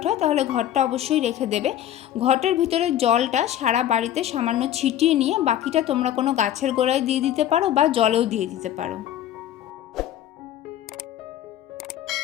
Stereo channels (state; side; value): quieter; right; 11.6 dB